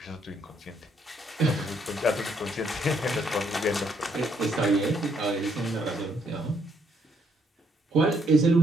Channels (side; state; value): both; normal; correlation 0.72